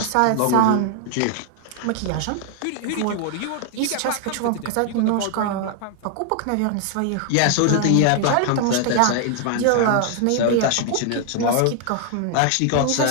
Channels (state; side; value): different; both; correlation 0.00